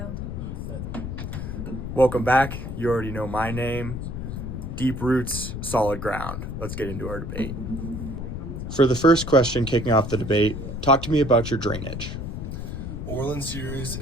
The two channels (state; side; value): noise; left; rumble, 6 dB below the sound